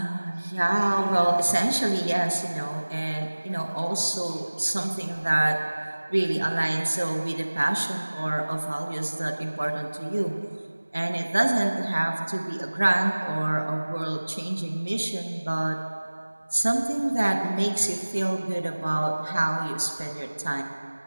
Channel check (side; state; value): both; inverted; correlation -1.00